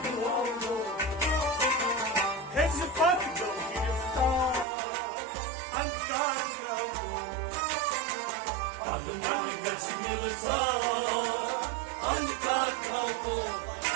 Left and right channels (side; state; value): left; drops out; at 4.7 s